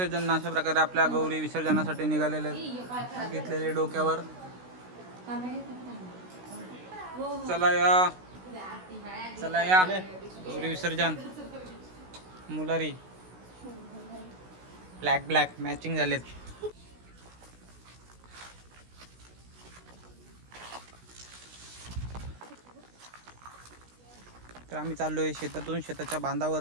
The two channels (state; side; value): late; left; 16 ms